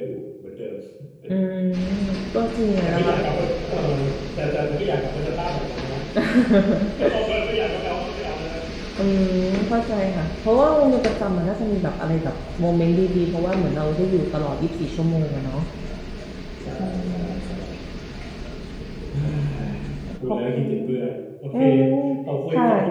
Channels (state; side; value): identical; both; correlation 1.00